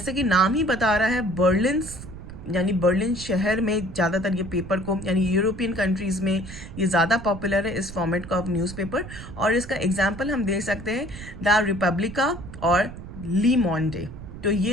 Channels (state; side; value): noise; right; rumble, 13 dB below the sound